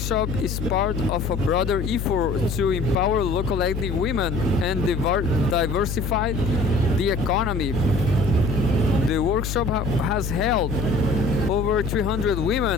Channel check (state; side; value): noise; left; hum, 4 dB below the sound